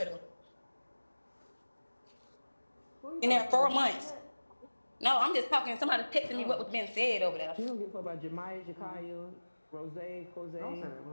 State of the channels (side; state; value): both; inverted; correlation -1.00